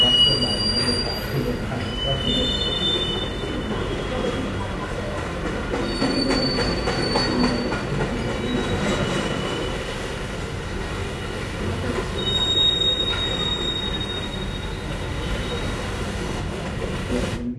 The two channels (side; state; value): both; identical; correlation 1.00